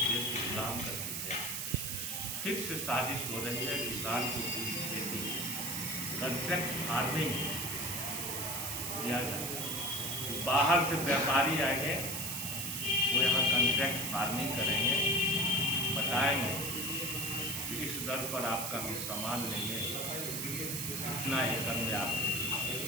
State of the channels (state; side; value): noise; right; hiss, 2 dB below the sound